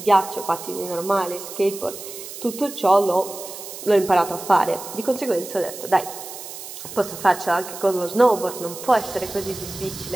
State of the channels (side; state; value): right; noise; hiss, 12 dB below the sound